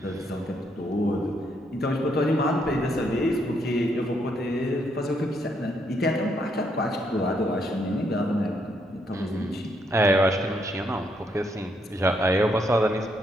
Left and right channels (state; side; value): normal; both; correlation 0.75